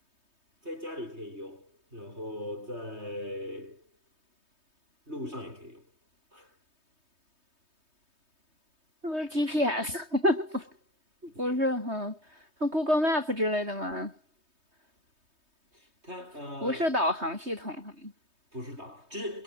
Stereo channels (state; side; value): late; left; 3.2 ms